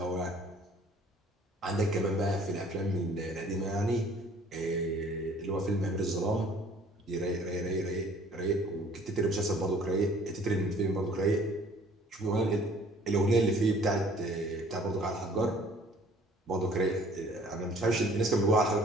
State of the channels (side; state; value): both; normal; correlation 0.55